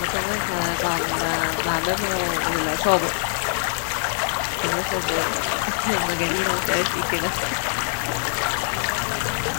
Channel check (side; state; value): right; silent; 63 dB below the other